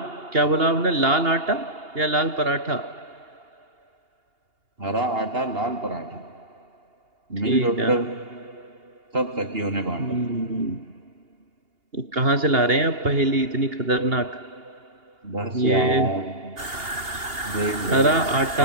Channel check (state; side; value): late; left; 2.8 ms